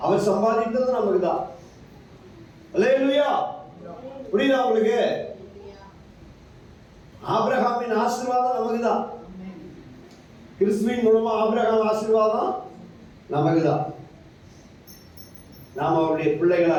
அவர் சம்பாதித்தது நமக்கு தான். அல்லேலூயா. புரியுதா உங்களுக்கு? ஆபிரகாமின் ஆசீர்வாதம் நமக்கு தான். கிறிஸ்துவின் மூலமா ஆபிரகாம் ஆசீர்வாதம் நமக்கு தான். நாம் அவருடைய பிள்ளைகளா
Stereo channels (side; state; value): both; identical; correlation 1.00